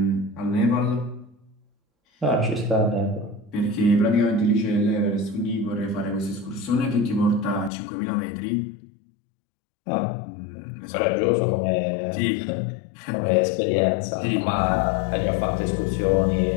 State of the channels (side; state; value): right; drops out; at 7.7 s